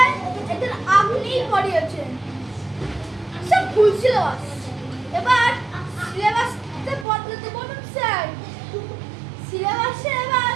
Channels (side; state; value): left; drops out; at 7.1 s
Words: একদিন আপনিই পড়িয়েছেন। সব ভুল সিলেবাস। এবার সিলেবাসটা বদলাতে বলুন স্যার। সিলেবাসে এবার